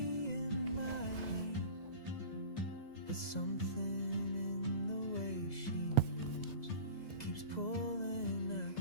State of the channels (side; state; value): right; late; 2.0 ms